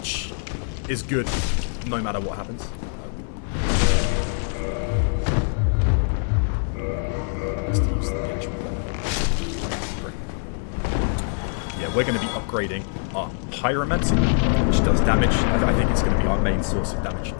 is good no matter what happens. Let's use the actual weapon. Yeah, we're going to be upgrading our Pyromancy, which does damage. I think it's going to be our main source of damage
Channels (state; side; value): silent; right; 63 dB below the other